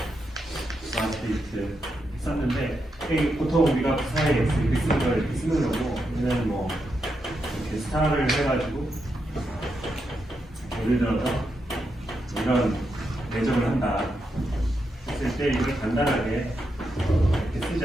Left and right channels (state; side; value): normal; both; correlation 0.84